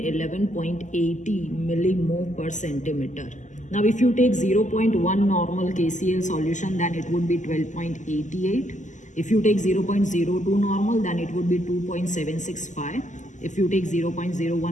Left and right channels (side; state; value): right; late; 0.36 ms